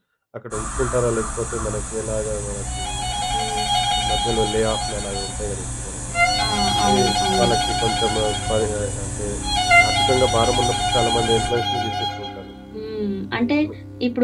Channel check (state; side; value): identical; both; correlation 1.00